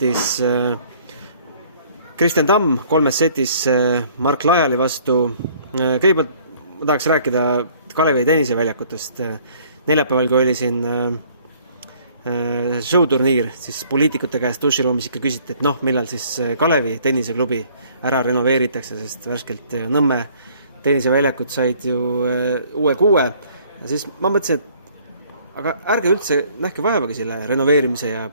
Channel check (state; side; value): inverted; both; correlation -0.58